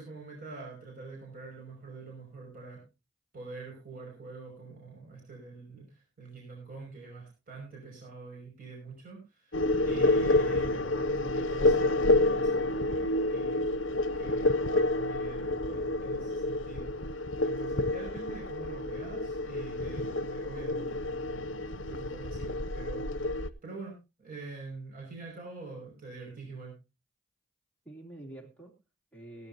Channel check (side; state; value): both; normal; correlation -0.01